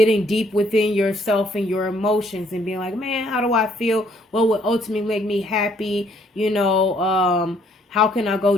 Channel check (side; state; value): both; normal; correlation 0.65